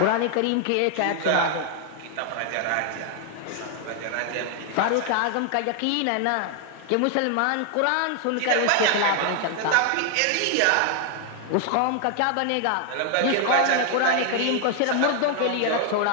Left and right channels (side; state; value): both; different; correlation 0.00